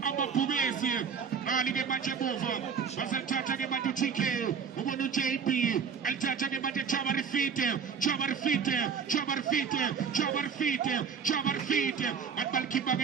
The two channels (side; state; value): left; quieter; 6.5 dB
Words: amabhubesi ali ke manje bova basathatha ke manje TK ubona uJP alithatha ke manje Chama Rifite atbalkipa ke